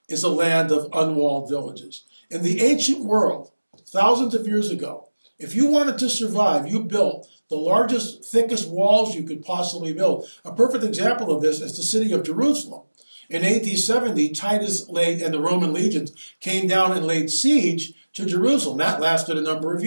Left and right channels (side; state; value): both; inverted; correlation -1.00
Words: is a land of unwalled villages. In the ancient world, thousands of years ago, if you wanted to survive, you built the largest, thickest walls you could possibly build. A perfect example of this is the city of Jerusalem. In AD 70, Titus and the Roman legions came down and laid siege to Jerusalem. That lasted a number of